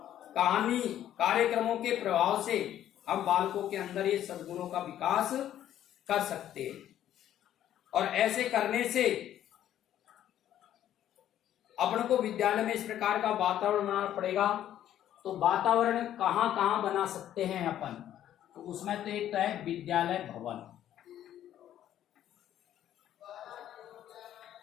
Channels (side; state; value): right; quieter; 11.5 dB